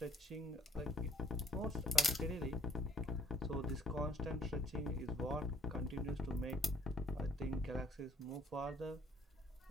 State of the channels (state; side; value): normal; both; correlation 0.61